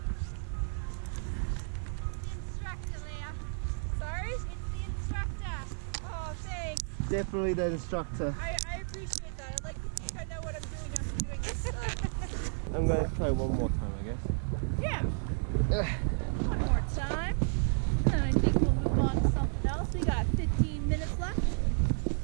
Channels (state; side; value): silent; left; digital silence